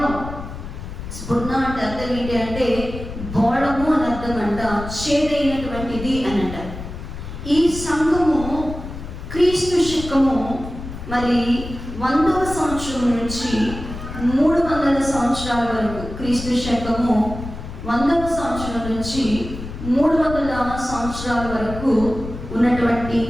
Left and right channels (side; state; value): left; noise; rumble, 10 dB below the sound